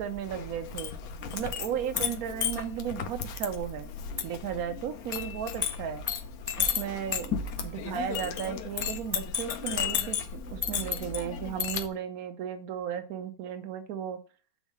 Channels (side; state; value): left; late; 4.3 ms